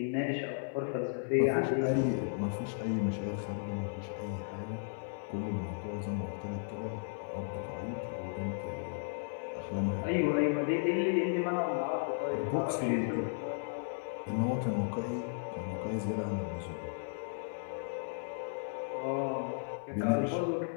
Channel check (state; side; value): silent; right; digital silence